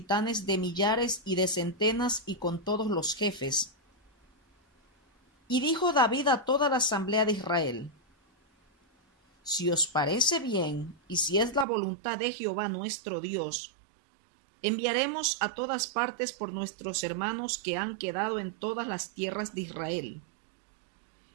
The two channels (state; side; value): drops out; left; at 11.7 s